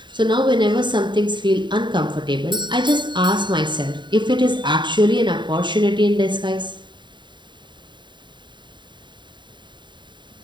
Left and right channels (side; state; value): left; late; 0.23 ms